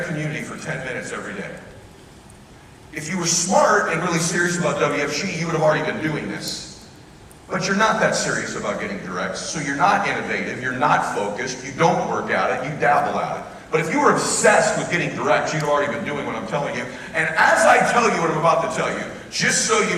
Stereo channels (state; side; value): identical; both; correlation 1.00